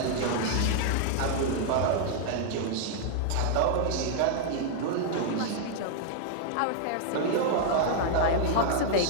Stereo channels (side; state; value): both; different; correlation -0.01